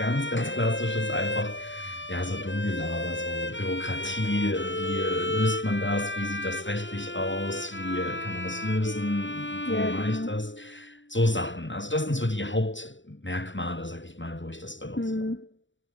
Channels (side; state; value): right; late; 0.54 ms